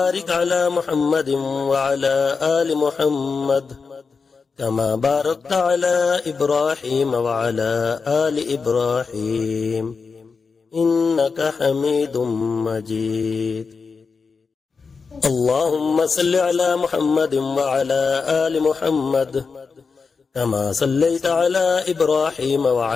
على محمد وعلى آل محمد كما باركت على إبراهيم وعلى آل إبراهيم إنك حميد مجيد. اللهم صل على محمد وعلى آل محمد كما صليت على إبراهيم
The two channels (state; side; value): quieter; right; 5.0 dB